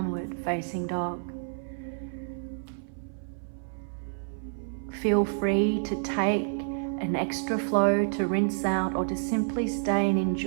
facing dog. Feel free to take an extra flow to rinse out, or to simply stay and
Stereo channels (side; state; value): left; silent; 57 dB below the other